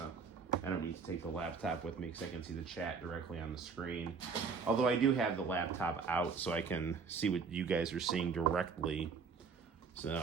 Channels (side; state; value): left; quieter; 5.4 dB